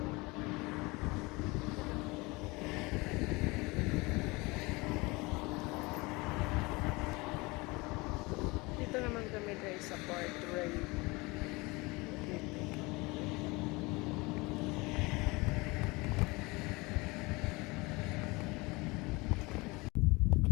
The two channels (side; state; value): right; quieter; 24.5 dB